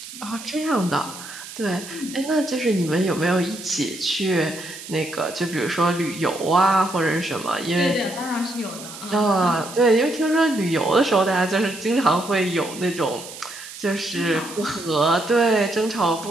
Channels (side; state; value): right; noise; hiss, 13 dB below the sound